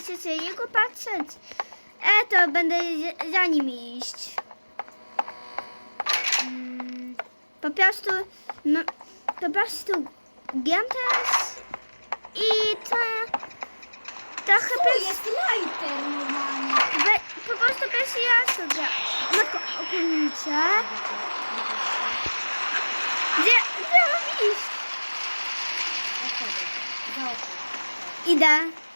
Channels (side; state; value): both; inverted; correlation -1.00